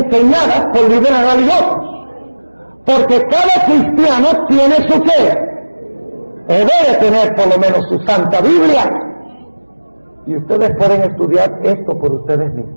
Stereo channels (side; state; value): both; inverted; correlation -1.00